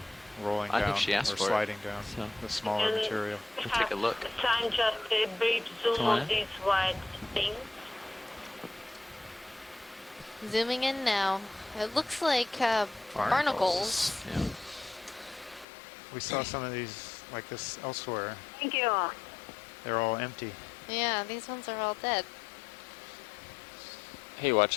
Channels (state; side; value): drops out; right; at 15.7 s